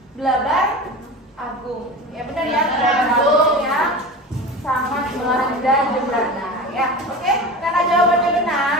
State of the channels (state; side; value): normal; both; correlation 0.31